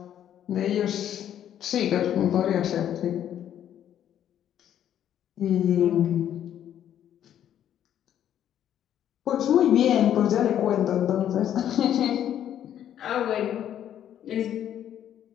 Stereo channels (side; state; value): right; quieter; 10.5 dB